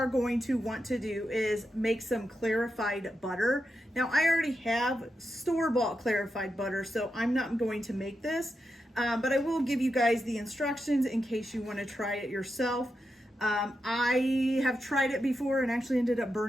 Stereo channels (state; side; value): normal; both; correlation 0.87